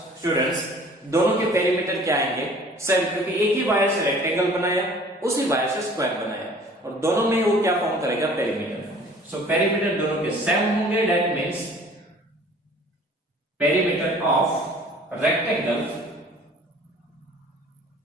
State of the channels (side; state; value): both; normal; correlation 0.50